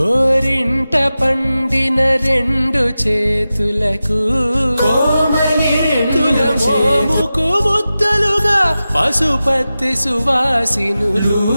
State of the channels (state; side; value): inverted; both; correlation -0.94